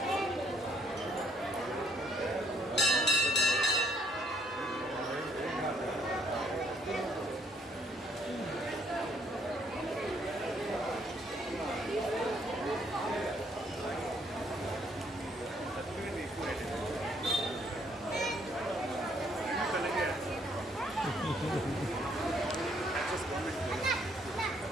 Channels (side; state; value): both; normal; correlation 0.68